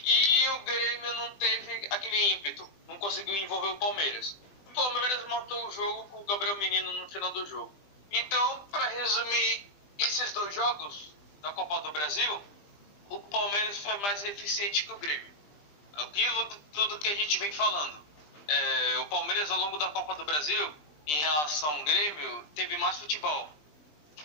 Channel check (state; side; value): late; right; 20 ms